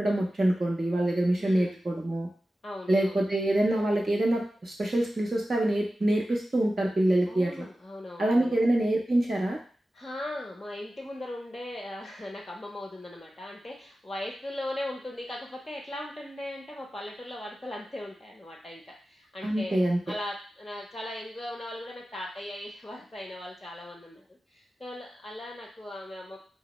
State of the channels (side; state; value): both; normal; correlation 0.94